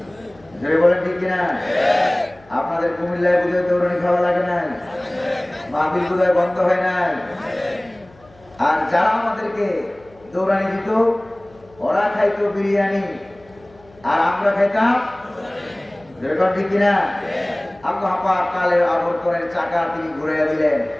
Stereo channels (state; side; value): noise; left; hum, 27 dB below the sound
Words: যদি বলেন ঠিক কিনা? আপনাদের কুমিল্লায় বুঝে দৌড়ানি খাওয়া লাগে নাই? মাহফিল বুঝে বন্ধ হয় নাই? আর যারা আমাদেরকে দৌড়ানি দিত ওরা খাইতো বিরিয়ানি আর আমরা খাইতাম যেরকম, ঠিক কিনা? আল্লাহ পাক কালের আবর্তনের চাকা তিনি ঘুরাইয়া দিলেন।